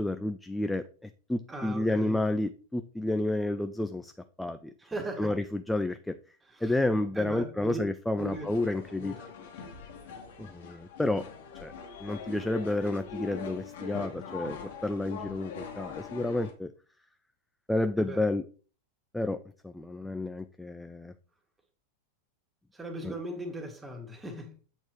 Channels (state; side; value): normal; both; correlation 0.88